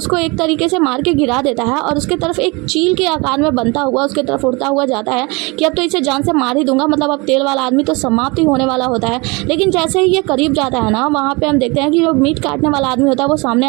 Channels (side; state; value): left; quieter; 27.0 dB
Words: एक तरीके से मार के गिरा देता है और उसके तरफ एक चील के आकार में बनता हुआ उसके तरफ उड़ता हुआ जाता है कि अब तो इसे जान से मार ही दूंगा, मतलब अब तेल वाला आदमी तो समाप्त ही होने वाला होता है। लेकिन जैसे ही ये करीब जाता है ना, वहाँ वहाँ पे हम देखते हैं कि जो मीट काटने वाला आदमी होता है वो सामने